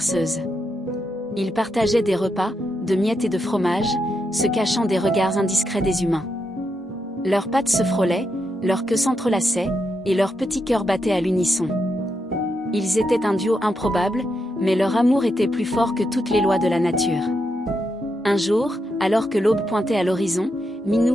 Ils partageaient des repas, de miettes et de fromage, se cachant des regards indiscrets des humains. Leurs pattes se frôlaient, leurs queues s'entrelaçaient, et leurs petits cœurs battaient à l'unisson. Ils étaient un duo improbable, mais leur amour était plus fort que toutes les lois de la nature. Un jour, alors que l'aube pointait à l'horizon,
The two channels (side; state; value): both; normal; correlation 0.83